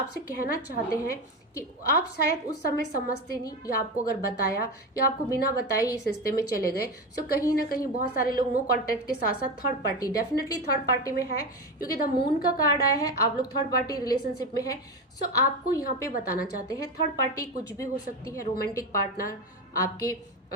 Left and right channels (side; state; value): both; normal; correlation 0.19